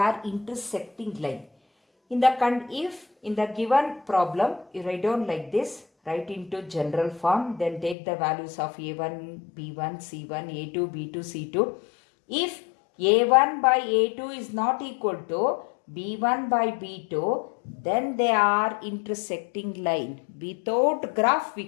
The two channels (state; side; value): drops out; right; at 8.0 s